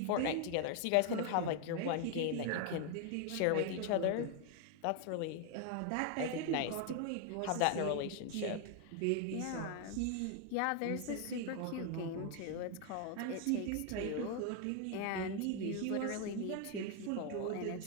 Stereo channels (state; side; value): different; both; correlation 0.01